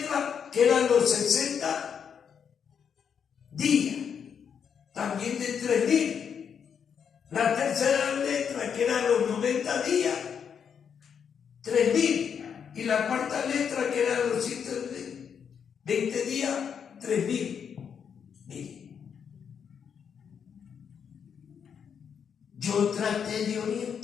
que eran los 60 días, también de 3.000. La tercera letra, que eran los 90 días, 3.000. Y la cuarta letra, que eran los 120 días, 3.000. Mire, yo traté de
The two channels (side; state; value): right; quieter; 7.3 dB